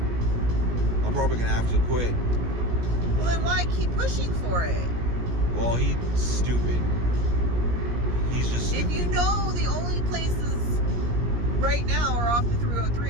quit. Well, then why keep pushing for it? Well, he's stupid. He's just stupid. If you know the only places right now are off the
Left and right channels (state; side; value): late; left; 17 ms